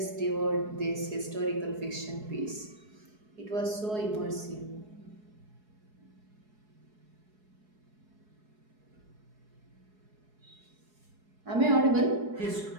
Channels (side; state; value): left; late; 4.7 ms